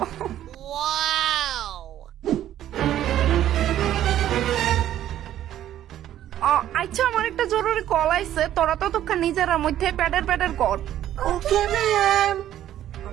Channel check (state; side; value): quieter; left; 12.0 dB